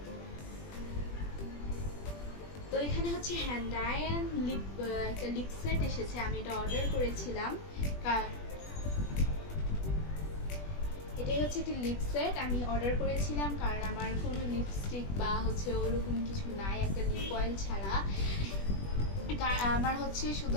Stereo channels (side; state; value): right; late; 20 ms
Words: তো এখানে হচ্ছে হ্যান্ড আয়রন লিপ, একটা লিপ সেট এসেছে। আমি এটা অর্ডার করেছিলাম। এটাই হচ্ছে একটা লিপ সেট আমি অর্ডার করেছিলাম, কারণ আমার কোনো লিপস্টিক বা হচ্ছে ওরকম কিছু নাই একটা লিপ অয়েল ছাড়া। আমার হচ্ছে